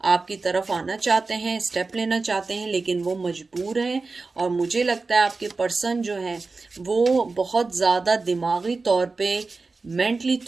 आपकी तरफ आना चाहते हैं, स्टेप लेना चाहते हैं, लेकिन वो मजबूर हैं। और मुझे लगता है आपके पर्सन जो है वो बहुत ज़्यादा दिमागी तौर पे, मेंटली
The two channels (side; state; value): left; quieter; 3.9 dB